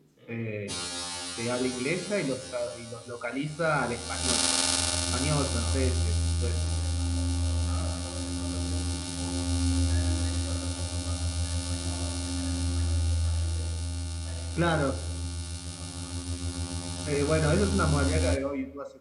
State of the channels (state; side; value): identical; both; correlation 1.00